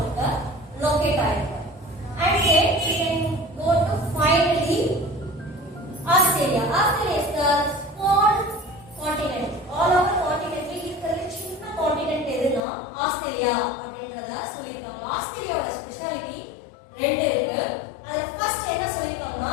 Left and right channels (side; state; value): right; drops out; at 12.6 s